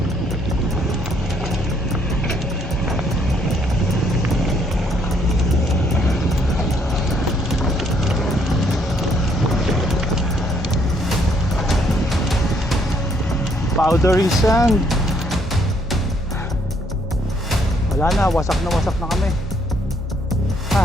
Powdery sand. Wala na, wasak na kami.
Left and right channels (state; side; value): normal; both; correlation 0.68